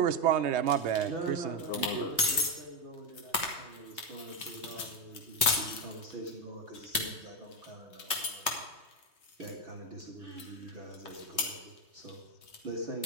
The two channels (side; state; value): left; late; 3.2 ms